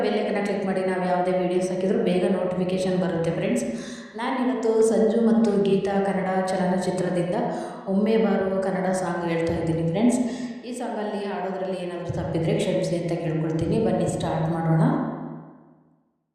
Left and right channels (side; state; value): both; identical; correlation 1.00